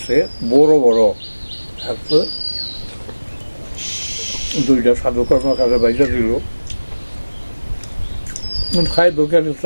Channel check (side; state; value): both; inverted; correlation -1.00